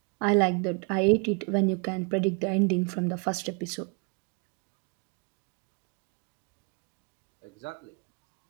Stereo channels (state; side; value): quieter; left; 35.8 dB